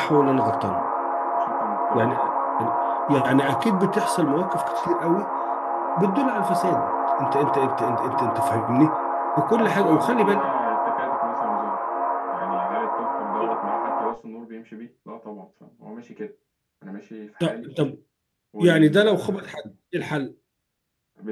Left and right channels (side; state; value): both; identical; correlation 1.00